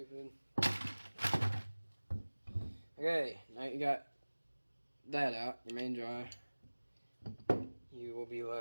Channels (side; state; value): both; inverted; correlation -1.00